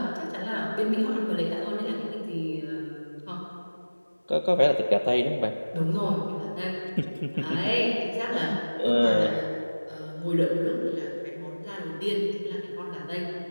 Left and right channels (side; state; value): both; inverted; correlation -1.00